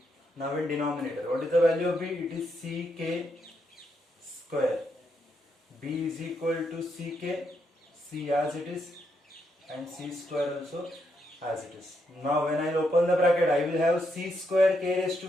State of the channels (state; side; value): normal; both; correlation 0.79